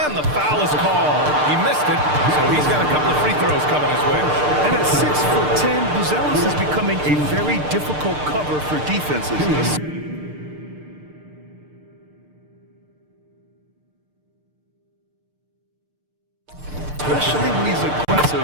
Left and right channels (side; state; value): left; late; 6.7 ms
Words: and the foul is called. He missed it, so he's got a couple of free throws coming his way. And at 6'10", Buzelis is becoming a very difficult cover for defenses. Especially when he's